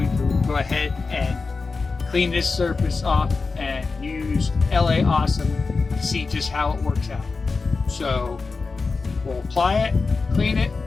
to go ahead and clean this surface off and use LA Awesome to see just how it works out. So we'll apply it, clean it,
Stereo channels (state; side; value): quieter; right; 4.3 dB